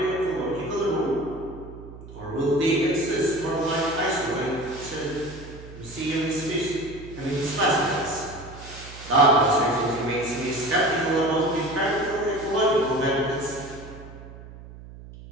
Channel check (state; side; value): noise; right; hum, 16 dB below the sound